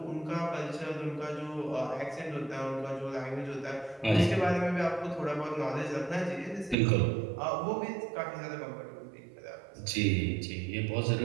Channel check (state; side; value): drops out; left; at 6.8 s